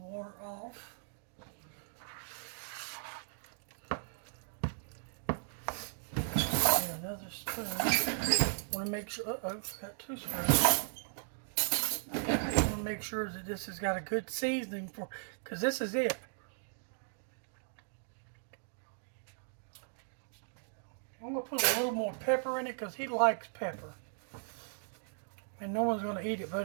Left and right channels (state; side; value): silent; left; digital silence